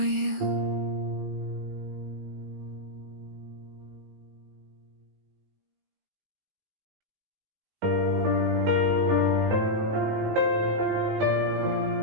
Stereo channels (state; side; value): late; left; 19 ms